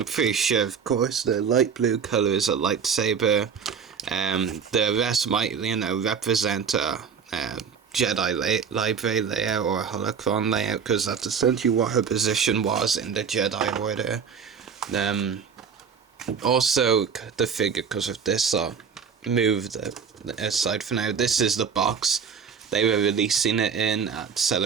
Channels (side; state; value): left; quieter; 6.6 dB